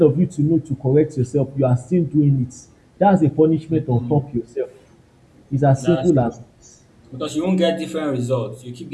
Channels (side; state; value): both; identical; correlation 1.00